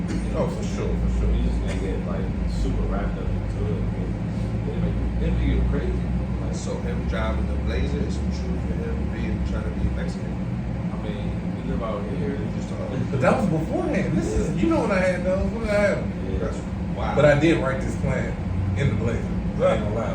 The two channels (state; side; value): identical; both; correlation 1.00